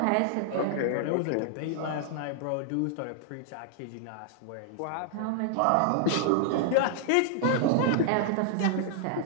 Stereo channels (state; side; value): different; both; correlation -0.01